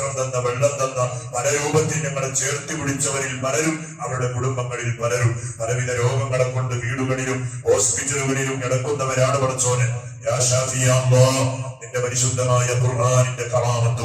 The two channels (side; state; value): both; identical; correlation 1.00